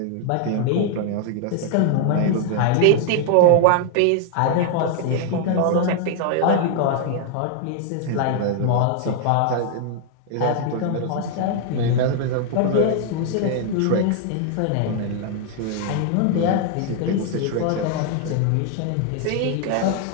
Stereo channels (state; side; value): different; both; correlation 0.00